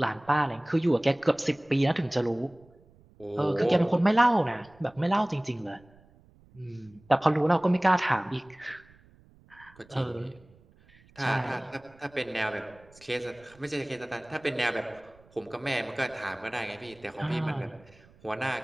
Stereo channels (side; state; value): right; noise; rumble, 28 dB below the sound